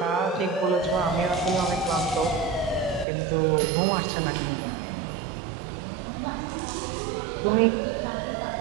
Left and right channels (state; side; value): drops out; left; at 3.1 s